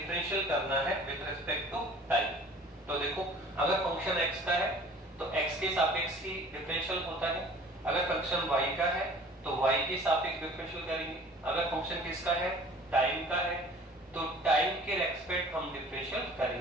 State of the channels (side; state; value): both; normal; correlation 0.48